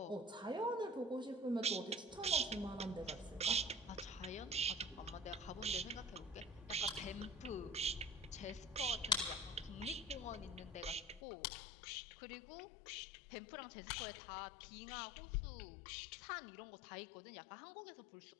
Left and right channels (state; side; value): drops out; right; at 11.2 s